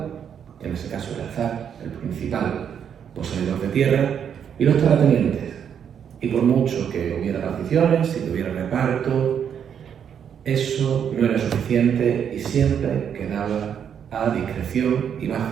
en ese caso el zar, el principal poseedor de tierra, y los terratenientes. Y por mucho que hubiera particiones, si hubiera reparto, eso no era suficiente y siempre quedaba a discreción y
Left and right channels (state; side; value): quieter; left; 8.2 dB